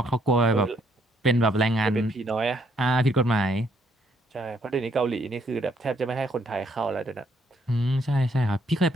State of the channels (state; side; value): normal; both; correlation 0.70